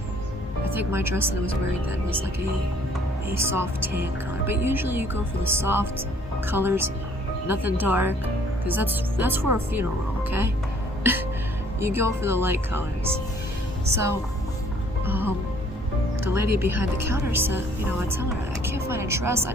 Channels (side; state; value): both; normal; correlation 0.59